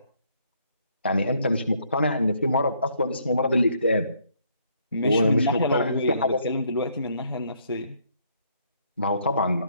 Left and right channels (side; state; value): both; inverted; correlation -0.69